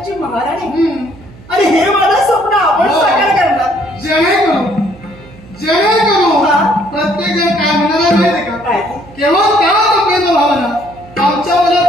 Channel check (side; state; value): right; noise; hum, 22 dB below the sound